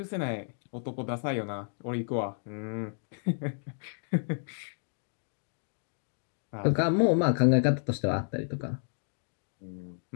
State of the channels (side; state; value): right; silent; digital silence